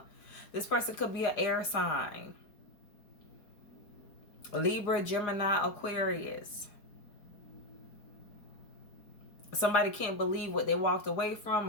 This person could be an air sign. Libra, Gemini, Aquarius. Somebody can't believe what they walked away from,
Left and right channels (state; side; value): late; right; 4.9 ms